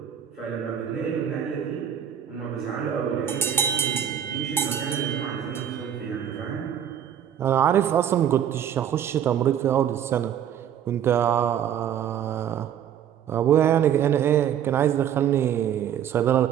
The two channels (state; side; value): quieter; left; 9.5 dB